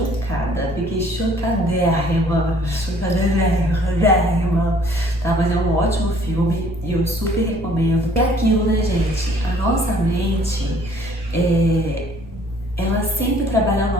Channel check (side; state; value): left; noise; rumble, 19 dB below the sound